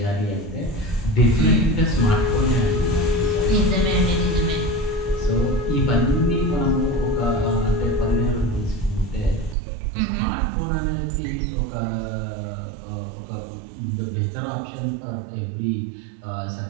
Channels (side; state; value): left; drops out; at 9.6 s